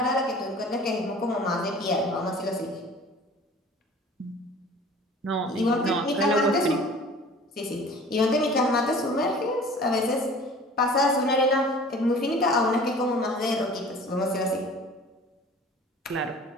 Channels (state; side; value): normal; both; correlation 0.45